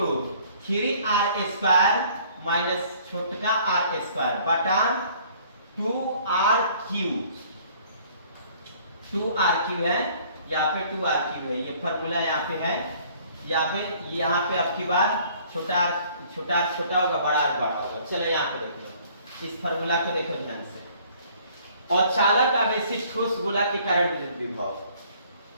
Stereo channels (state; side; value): inverted; both; correlation -0.56